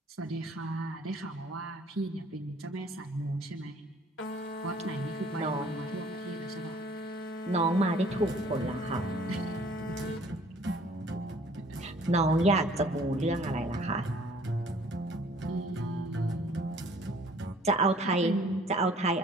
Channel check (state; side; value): normal; both; correlation 0.55